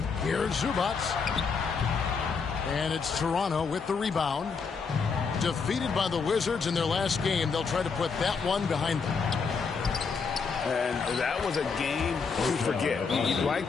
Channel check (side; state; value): right; quieter; 5.3 dB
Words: Here's Zubac. And it's Toronto with the rebound. Defeated by the Wizards in their last game, they'll try to put that one behind them. And that was a game to forget. You'd